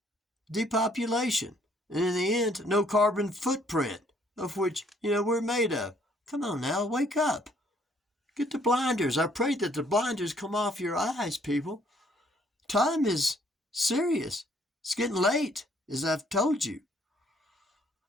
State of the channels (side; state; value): both; normal; correlation 0.64